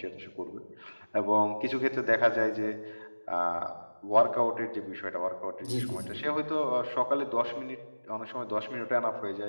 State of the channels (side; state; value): both; inverted; correlation -1.00